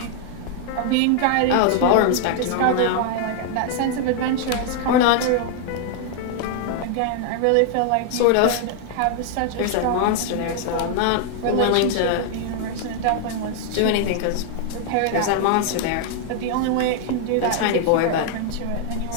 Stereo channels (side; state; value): both; different; correlation 0.00